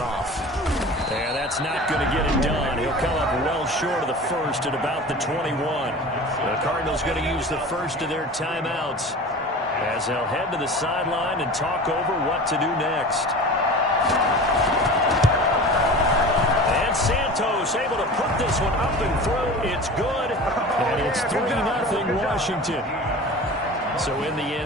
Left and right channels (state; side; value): normal; both; correlation 0.36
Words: off. Yeah, that's not going to get it done. He'll come up well short of the first at about the 21. The Cardinals going to use the first of their timeouts as they'll head to the sideline and talk over what to do next. And Santos able to put this one up and through. It's good. And it's 3-0 Washington. So in the